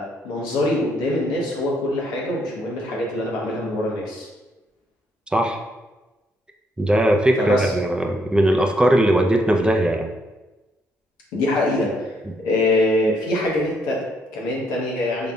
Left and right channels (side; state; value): both; normal; correlation 0.73